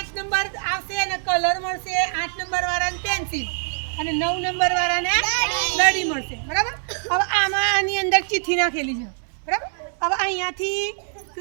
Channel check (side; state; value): left; silent; 63 dB below the other